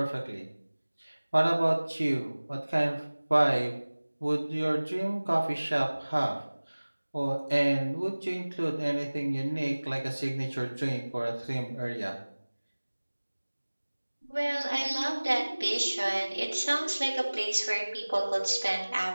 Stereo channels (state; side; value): inverted; both; correlation -1.00